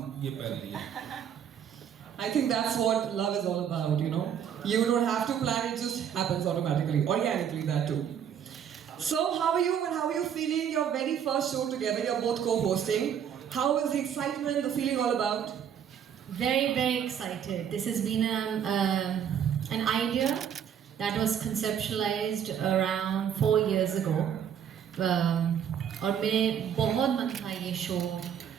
ये पहन लिया। I think that's what love is all about, you know. You don't have to plan, it just happens automatically, organically, that too. So, how are you and how are you feeling? Your very first show together, you're both co-hosting. How is the excitement, the feeling all about? Very, very excited. This has been an idea that was conceptualized around 4 years ago. और मेरे बहुत मन था ये शो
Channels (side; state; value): left; quieter; 8.6 dB